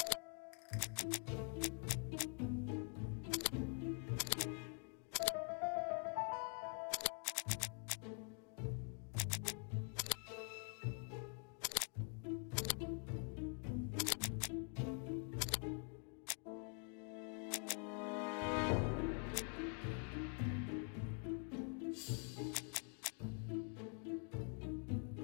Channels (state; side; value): quieter; right; 39.8 dB